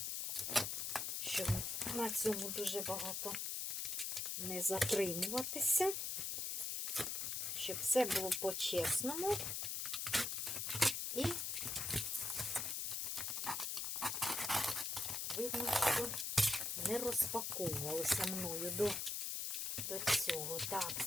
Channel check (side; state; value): left; noise; hiss, 1 dB below the sound